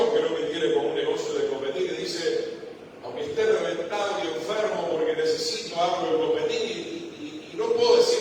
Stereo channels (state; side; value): identical; both; correlation 1.00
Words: que no me tiene como un negocio de competir, y dice, aunque esté reventado y enfermo porque necesito algo de competir y no puedo